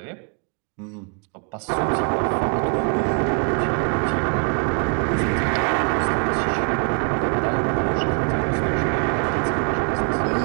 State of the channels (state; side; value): quieter; left; 36.3 dB